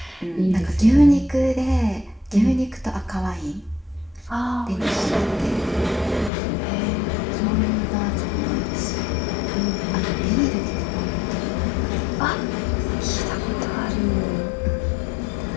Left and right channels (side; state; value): right; drops out; at 6.3 s